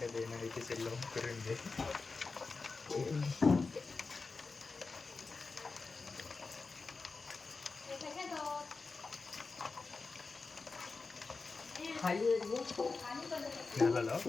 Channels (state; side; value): quieter; right; 4.2 dB